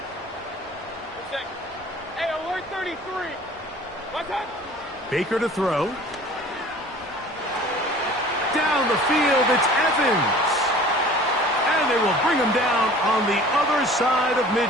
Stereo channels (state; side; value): normal; both; correlation 0.46